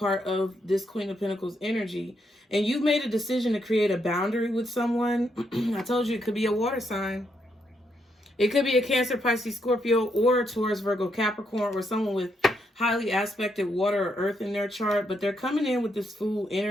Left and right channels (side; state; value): both; normal; correlation 0.78